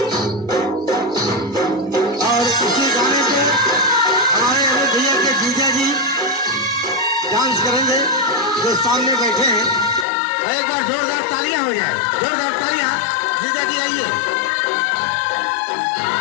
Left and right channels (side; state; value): right; drops out; at 10.1 s